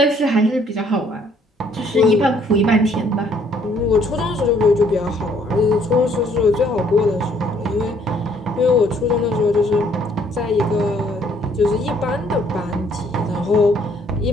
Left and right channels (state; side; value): normal; both; correlation 0.64